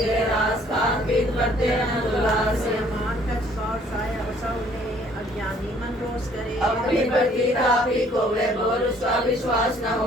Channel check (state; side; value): normal; both; correlation 0.60